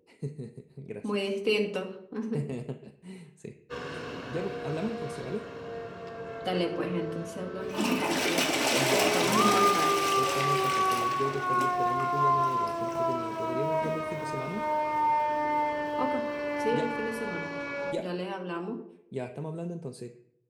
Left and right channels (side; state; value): both; identical; correlation 1.00